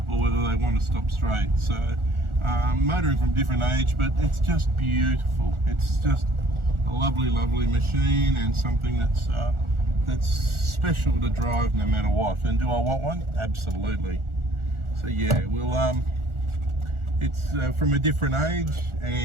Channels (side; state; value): left; late; 1.4 ms